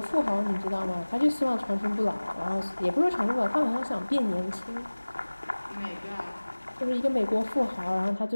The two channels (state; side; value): inverted; both; correlation -1.00